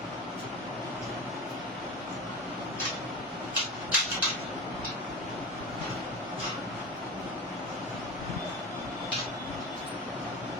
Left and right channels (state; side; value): normal; both; correlation 0.27